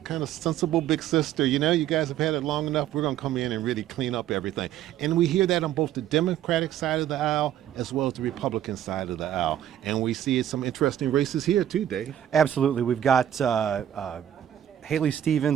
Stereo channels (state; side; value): quieter; left; 11.1 dB